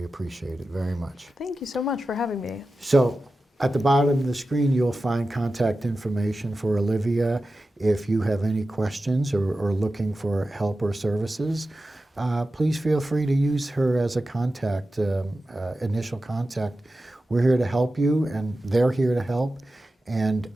appreciate it very much. Thank you so much for having me. So at the bottom of the screen, you'll find contact information for Olivia. If you have any questions or looking for help or services, please feel free to use her as a contact, initial contact. We're here to help you, and they're here to help. And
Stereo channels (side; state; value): both; normal; correlation 0.93